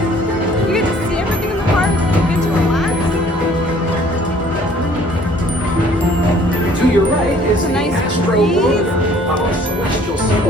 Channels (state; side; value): normal; both; correlation 0.56